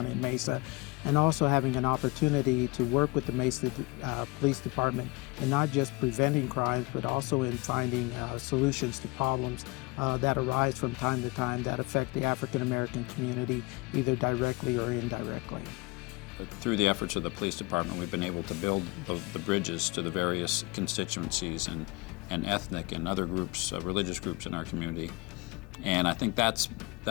in Mesa, and also having an opportunity to work with the Mesa Police Department in not just preventing crimes, but also in finding solutions to problems that arise from time to time that affect the African American community, either directly or indirectly. Through the efforts of the police department, we've been able to build the bridges to the various constituencies and ethnic and other groups, religious groups in our community. And I think that's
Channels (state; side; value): quieter; right; 25.3 dB